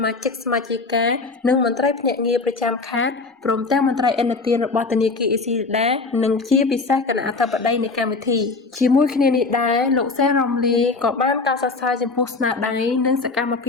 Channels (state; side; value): quieter; right; 3.9 dB